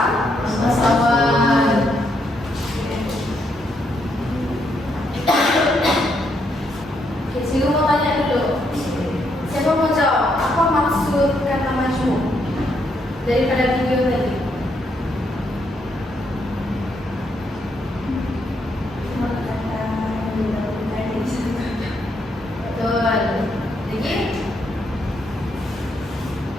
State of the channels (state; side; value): normal; both; correlation 0.76